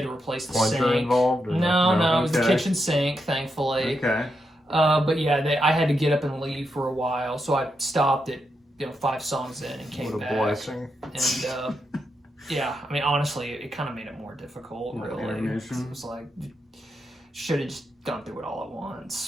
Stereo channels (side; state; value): both; normal; correlation 0.84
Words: to replace the Plunger sink. involved? Or No, it was the Okay. kitchen sink, thankfully. Okay. But yeah, I had to get up and leave for a while, so I stopped at 5 songs in and came What a back. blessing. And yeah, I mean, honestly, it kind of made it more difficult. Little Really, intermission. it was like should have just gone through it all at